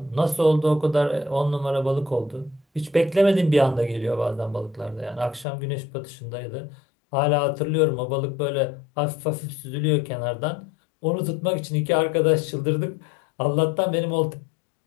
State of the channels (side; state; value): right; drops out; at 5.5 s